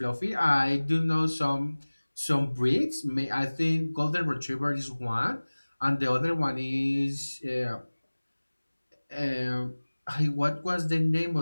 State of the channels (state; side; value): inverted; both; correlation -1.00